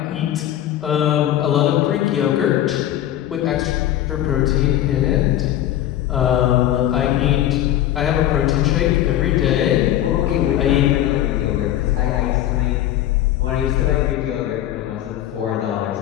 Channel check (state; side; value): quieter; right; 12.6 dB